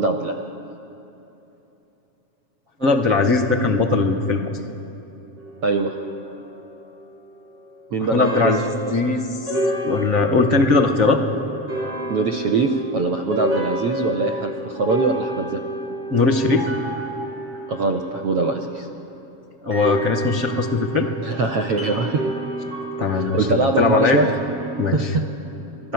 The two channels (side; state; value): left; late; 7.4 ms